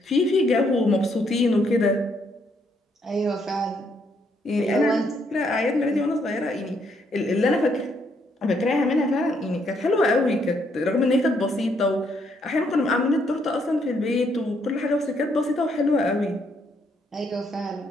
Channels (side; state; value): both; normal; correlation 0.72